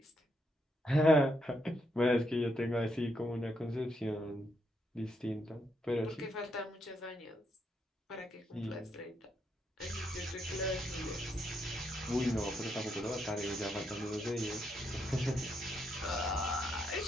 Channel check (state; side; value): normal; both; correlation 0.78